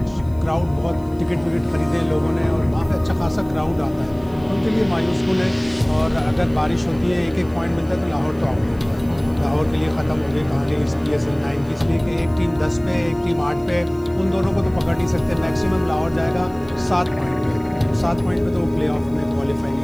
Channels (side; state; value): left; noise; hiss, 30 dB below the sound